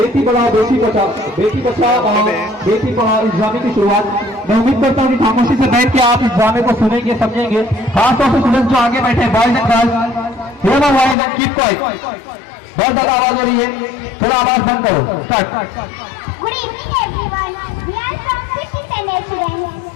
बढ़ाओ बेटी बचाओ बेटी पढ़ाओ इस्लामी की शुरुआत। मैं उम्मीद करता हूँ कि खामोशी से बैठ के आप इस्लामी को सुनेंगे समझेंगे। खासतौर से स्टूडेंट्स जो आगे बैठे boys and girls, keep quiet, बहुत ज्यादा आवाज हो रही है, थोड़ा आवाज बंद करो। Start. Good evening everyone. We are from 5th standard students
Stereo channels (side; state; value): right; drops out; at 11.2 s